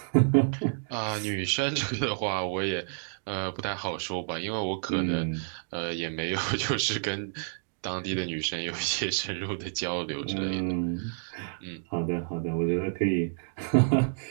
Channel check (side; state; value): left; silent; digital silence